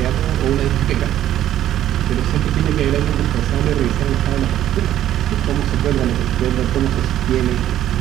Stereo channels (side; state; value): left; quieter; 12.2 dB